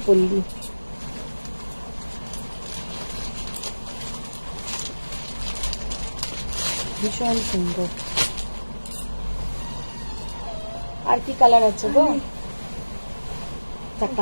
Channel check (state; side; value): inverted; both; correlation -1.00